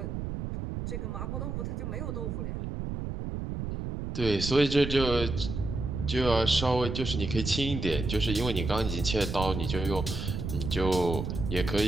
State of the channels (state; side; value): noise; right; rumble, 4 dB below the sound